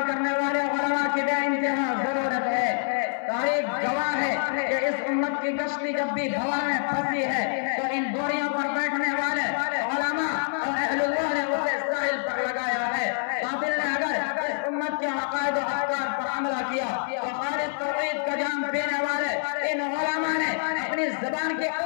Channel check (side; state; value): right; silent; 61 dB below the other